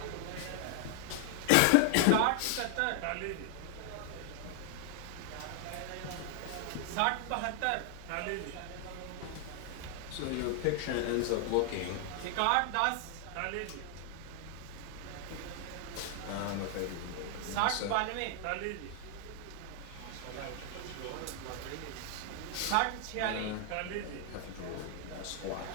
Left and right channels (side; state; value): both; different; correlation 0.00